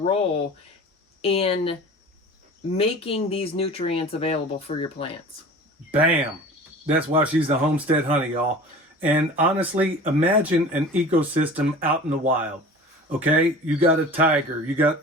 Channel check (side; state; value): both; normal; correlation 0.40